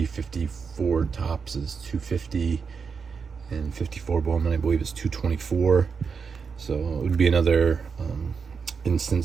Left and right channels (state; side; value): quieter; left; 5.7 dB